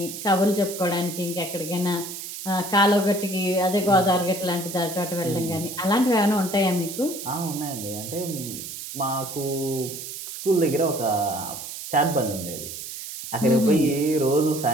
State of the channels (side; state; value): right; noise; hiss, 9 dB below the sound